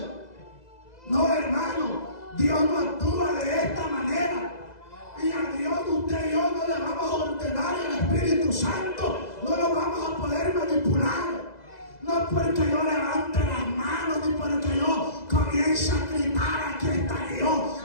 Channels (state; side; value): late; right; 2.0 ms